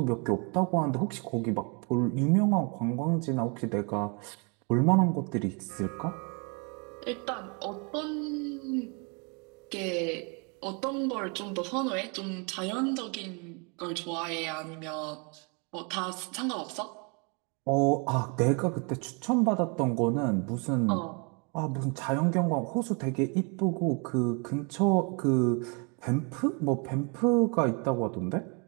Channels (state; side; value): quieter; left; 33.8 dB